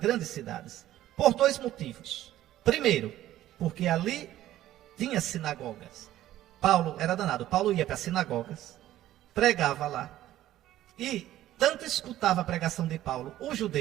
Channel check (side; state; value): left; quieter; 13.7 dB